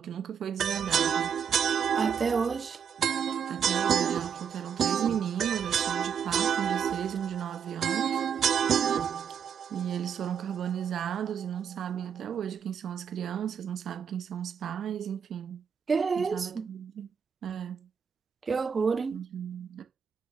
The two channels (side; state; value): left; quieter; 7.6 dB